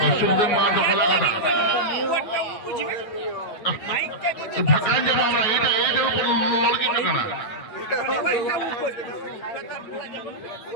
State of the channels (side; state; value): right; late; 9.4 ms